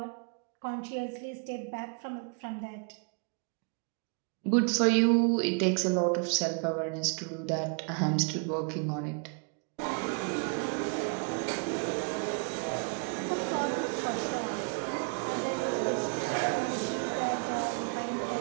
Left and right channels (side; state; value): left; quieter; 37.8 dB